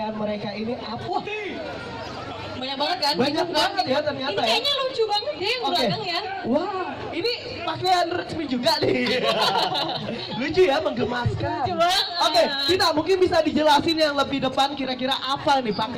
mereka ini apa? Banyak banget kan? Banyak banget ya ternyata. Ini kayaknya lucu banget deh yang belakang ya. Wah, ini pakaian resmi juga nih. Lucu ya, menggemaskan. Lucu banget. Oke, kita mungkin bisa dijelasin yang lebih depan kira-kira apa nih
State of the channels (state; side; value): identical; both; correlation 1.00